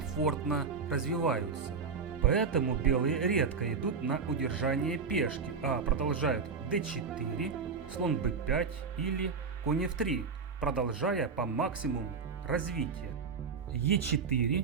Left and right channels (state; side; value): quieter; left; 5.3 dB